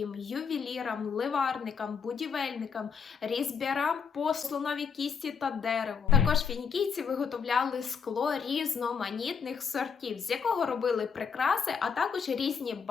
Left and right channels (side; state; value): right; quieter; 6.4 dB